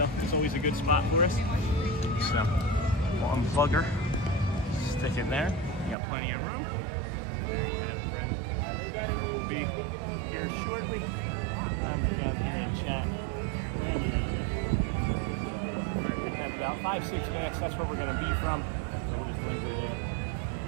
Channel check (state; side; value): drops out; left; at 6.0 s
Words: it's always a good spot for us. So we'll unplug her, stick it there. You got plenty of room. There you have it, friends. Sure we'll be here shortly. I'm down here in chat. And we have about 5-6 minutes. That's where we're going to be from. So we'll just linger here